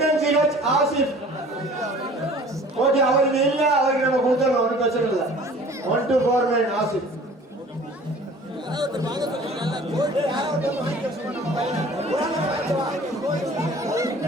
ஆசிப். ஓகே, அவருக்கு இல்ல, அவருக்கு நம்ம கொடுத்துடலாம், ஒன்றும் பிரச்சனை இல்லை. 1249 ஆசிப்.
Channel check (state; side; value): normal; both; correlation 0.47